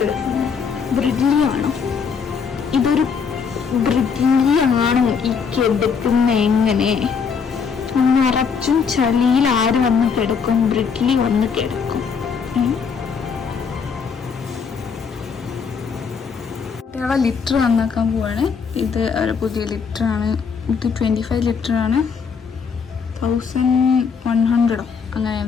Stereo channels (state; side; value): quieter; right; 6.0 dB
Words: ബ്രിഡ്ലി ആണോ? ഇതൊരു ബ്രിഡ്ലി ആണോ ഈ കിടക്കുന്ന? എങ്ങനെ നിറച്ചും ചളിയിൽ ആര് വന്ന് കിടക്കും? ബ്രിഡ്ലി വന്ന് കിടക്കും. കുട്ടികളെ ലിറ്റർ നന്നാക്കാൻ പോവാണ്. ഇത് ഒരു പുതിയ ലിറ്ററാണ്. ഇത് 25 ലിറ്ററാണ്. 1100 അങ്ങനെ